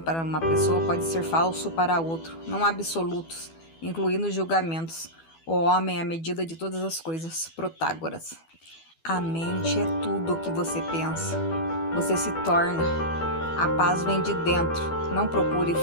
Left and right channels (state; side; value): late; right; 12 ms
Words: para uma pessoa pode ser falso para outro. Não há absolutos, incluindo julgamentos. O homem é a medida de todas as coisas. Protágoras. A mente é tudo o que você pensa. Você se torna. A paz vem de dentro, não procure